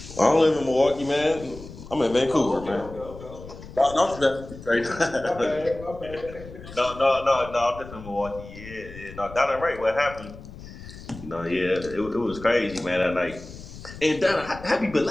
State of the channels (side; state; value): left; noise; rumble, 15 dB below the sound